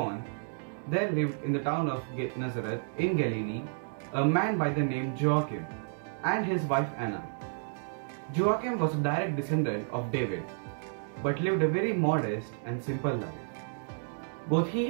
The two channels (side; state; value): left; silent; digital silence